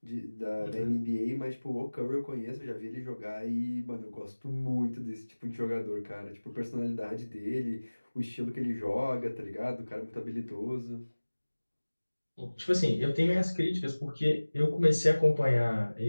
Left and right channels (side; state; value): both; inverted; correlation -1.00